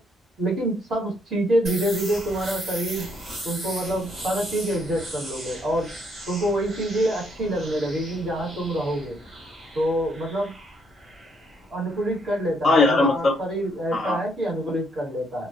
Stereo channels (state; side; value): normal; both; correlation 0.71